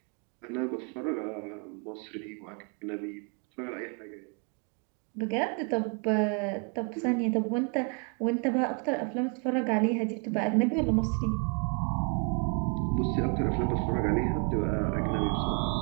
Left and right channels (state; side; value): quieter; left; 36.8 dB